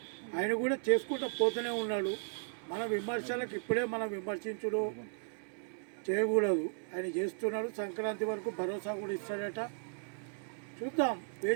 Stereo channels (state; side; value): silent; left; digital silence